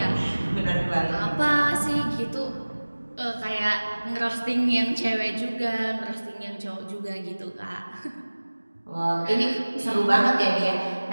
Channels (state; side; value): inverted; both; correlation -1.00